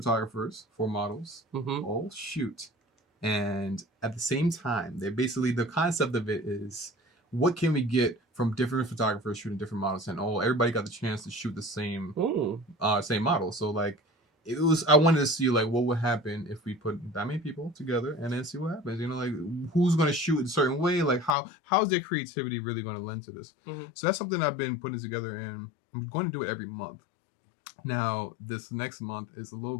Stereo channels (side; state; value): right; drops out; at 21.4 s